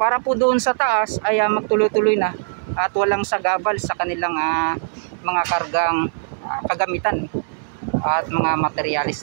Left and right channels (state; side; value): silent; left; 65 dB below the other